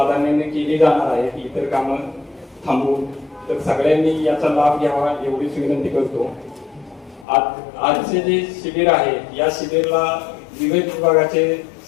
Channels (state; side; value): drops out; right; at 7.2 s